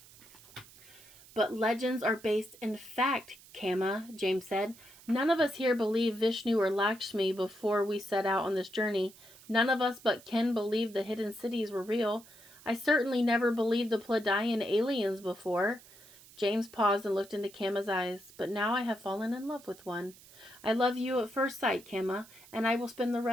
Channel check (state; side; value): noise; right; hiss, 22 dB below the sound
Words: But legends are based in fact, Kama, James said. None of us here believe Vishnu or Lakshmi before we set out on this journey. None of us but Ken believed the hidden cities were real. I certainly never believed the Pleiadian aliens before. James paused and looked into Kama's eyes. But now I have fallen in love with one. I love you at first sight, Kama, and I will spend the